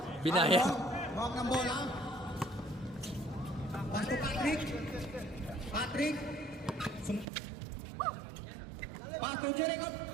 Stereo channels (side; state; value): left; drops out; at 7.2 s